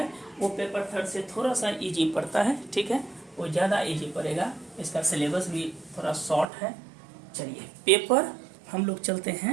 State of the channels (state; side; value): drops out; left; at 6.5 s